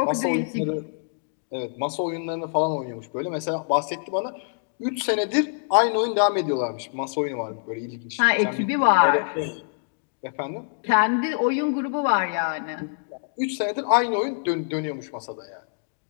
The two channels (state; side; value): silent; right; digital silence